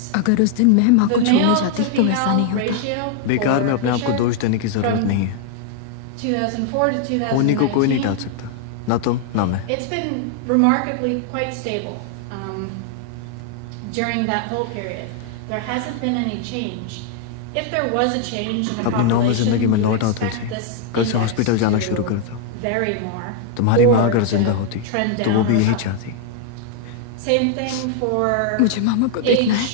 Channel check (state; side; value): different; both; correlation 0.00